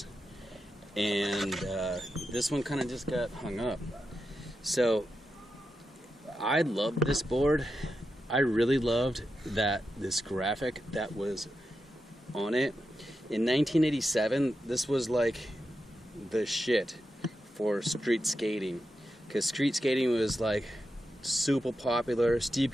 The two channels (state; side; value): normal; both; correlation 0.88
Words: and this one kind of just got hung up. So I loved this board. I really loved this graphic that was on it. In 1987, this was like the shit for street skating, because street skating was like super popular. Steve